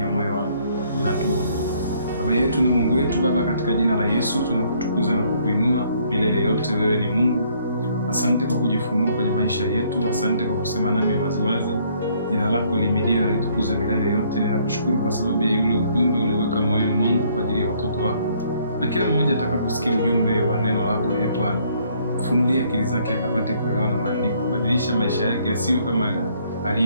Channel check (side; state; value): both; inverted; correlation -0.65